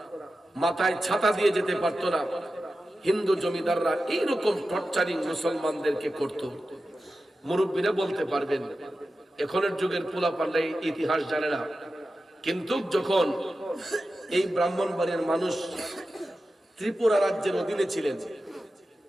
মাথায় ছাতা দিয়ে যেতে পারত না। হিন্দু জমিদাররা এইরকম টর্চারিং মুসলমানদেরকে করত। মুরব্বীরা বলতে পারবেন, এখনের যুগের পোলাপানরা ইতিহাস জানে না, কিন্তু যখন এই ব্রাহ্মণবাড়িয়ার মানুষ ত্রিপুরা রাজ্যের অধীনে ছিলেন,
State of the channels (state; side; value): normal; both; correlation 0.93